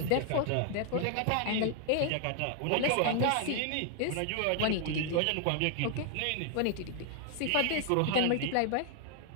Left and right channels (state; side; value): different; both; correlation 0.00